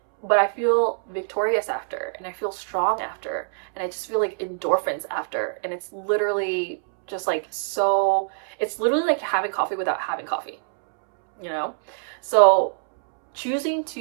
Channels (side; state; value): left; silent; 61 dB below the other